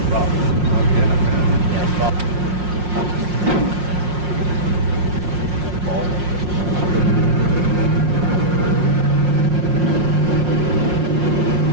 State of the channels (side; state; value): left; late; 5.6 ms